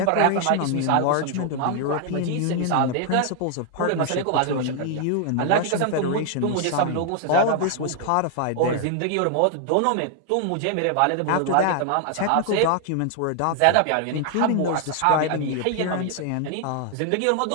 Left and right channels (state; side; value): different; both; correlation 0.00